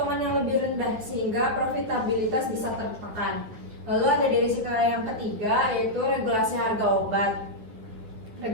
yang lebih rendah sehingga profitabilitas bisa tertekan. Lalu ada di risiko yang ketiga, yaitu regulasi harga obat.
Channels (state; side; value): late; left; 9.6 ms